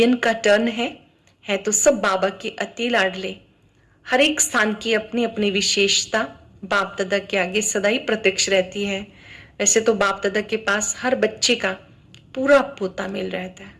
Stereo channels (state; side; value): identical; both; correlation 1.00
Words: का टर्न है तो सब बाबा के अति लाडले। हर एक स्थान की अपनी अपनी विशेषता बाप दादा के आगे सदा ही प्रत्यक्ष रहती है। वैसे तो बाप दादा के पास हर बच्चे का पूरा पोता मिल रहता है।